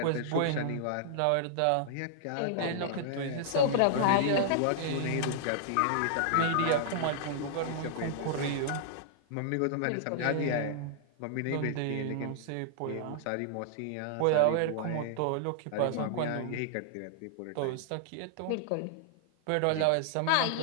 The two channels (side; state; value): both; different; correlation -0.01